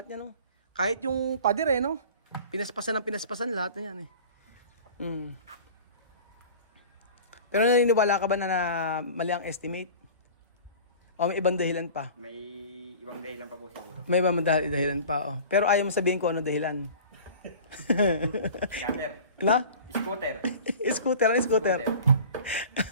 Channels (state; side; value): inverted; both; correlation -0.40